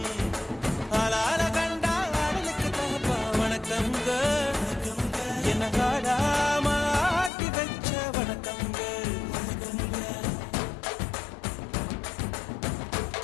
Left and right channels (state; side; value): drops out; right; at 7.3 s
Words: ஆளால கண்டா ஆடலுக்கு தகப்பா வணக்கங்க என்ன காடாம ஆட்டி வச்ச வணக்கங்க